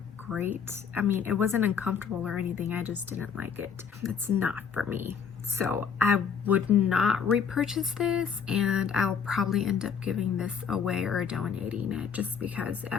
great. I mean, it wasn't uncomfortable or anything, I just didn't like it. It's not for me. So I would not repurchase this, and I'll probably end up giving this away or donating it, just because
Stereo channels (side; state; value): right; quieter; 6.8 dB